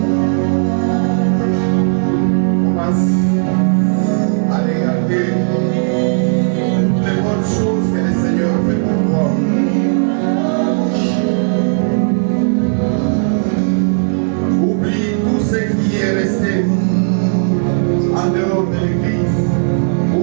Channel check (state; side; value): silent; left; digital silence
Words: commence à regarder toutes les bonnes choses que le Seigneur fait pour toi. Oublie tout ce qui est resté en dehors de l'église.